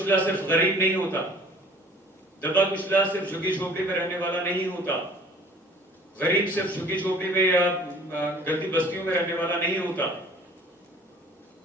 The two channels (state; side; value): normal; both; correlation 0.51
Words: सिर्फ गरीब नहीं होता, दबा कुचला सिर्फ झुग्गी झोपड़ी में रहने वाला नहीं होता, गरीब सिर्फ झुग्गी झोपड़ी में या गंदी बस्तियों में रहने वाला नहीं होता।